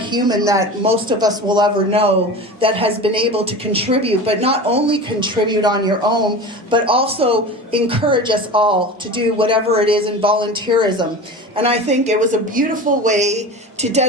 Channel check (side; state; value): both; normal; correlation 0.32